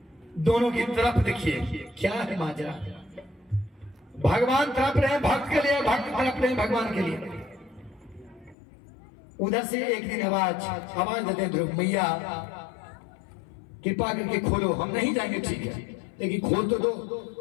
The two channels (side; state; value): right; drops out; at 8.6 s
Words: दोनों की तरफ देखिए क्या है माजरा। भगवान तड़प रहे हैं भक्त के लिए, भक्त तड़प रहे हैं भगवान के लिए। उधर से एक दिन आवाज देते हैं ध्रुव, मैया कृपा करके खोलो, हम नहीं जाएंगे ठीक है लेकिन खोल तो दो।